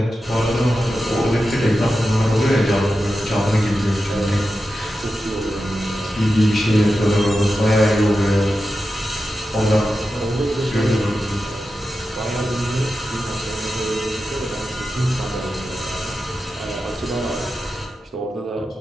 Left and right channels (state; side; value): normal; both; correlation 0.91